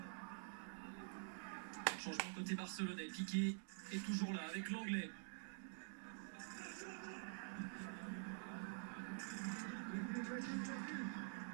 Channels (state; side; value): silent; left; digital silence